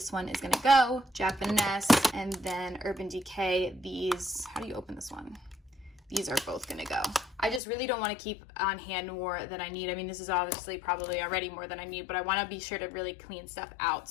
one is gonna go. Japanese, and then Urban Decay. These, how do you open this one? These are both gonna go. I just really don't want to keep on hand more than I need. I mean, this is obviously probably already more than I need, but I want to be sure to really clean stuff out.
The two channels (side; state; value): right; drops out; at 7.6 s